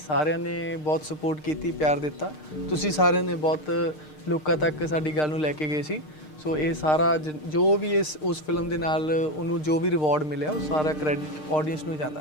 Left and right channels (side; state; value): right; late; 6.6 ms